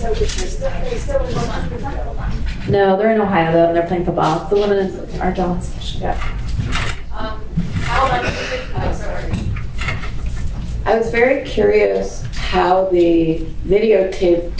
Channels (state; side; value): identical; both; correlation 1.00